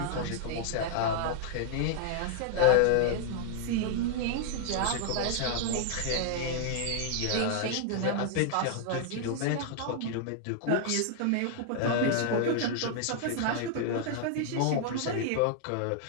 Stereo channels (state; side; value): different; both; correlation -0.01